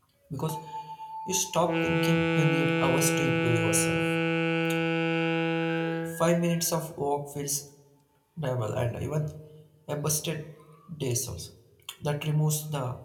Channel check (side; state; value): both; identical; correlation 1.00